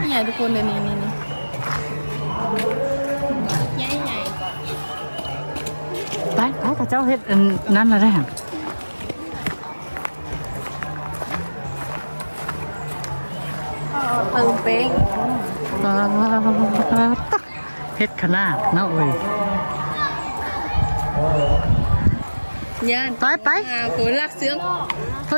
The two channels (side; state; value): both; inverted; correlation -1.00